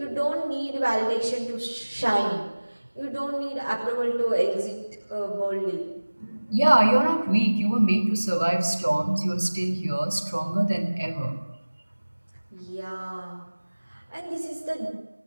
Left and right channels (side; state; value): both; inverted; correlation -1.00